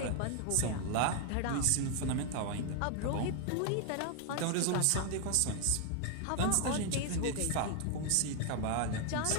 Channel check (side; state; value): both; different; correlation 0.00